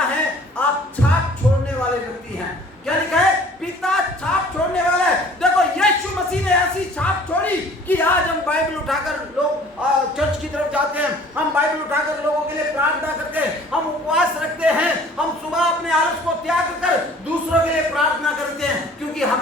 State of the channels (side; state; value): both; normal; correlation 0.51